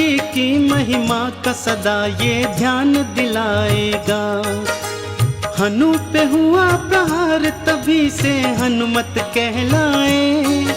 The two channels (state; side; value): identical; both; correlation 1.00